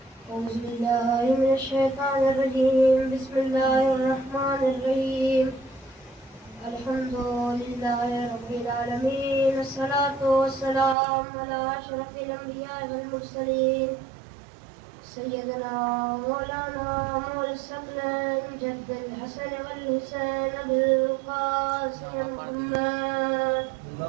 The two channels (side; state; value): left; drops out; at 11.0 s